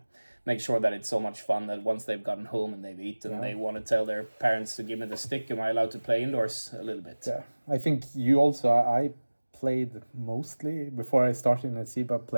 make sure that it's so much fun that once they've gotten home and they've eaten, they want to tell their parents to give me the stick. Am I allowed to play indoors a little bit? Yeah, I think you also. I played mostly before I started in SIBA.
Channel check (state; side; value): inverted; both; correlation -1.00